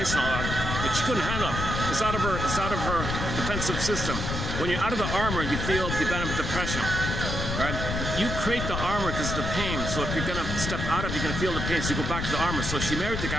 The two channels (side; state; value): left; noise; rumble, 3 dB below the sound